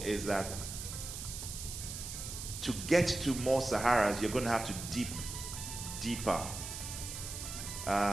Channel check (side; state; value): right; noise; hiss, 7 dB below the sound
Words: is that to get to more Saharas, you're going to have to deeper.